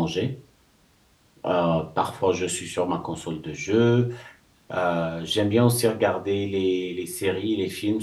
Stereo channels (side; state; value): both; identical; correlation 1.00